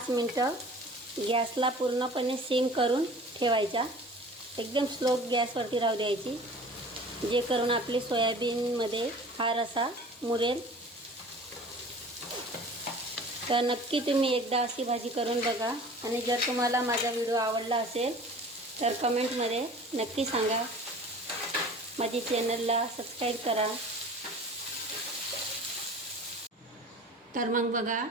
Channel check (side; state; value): both; normal; correlation 0.43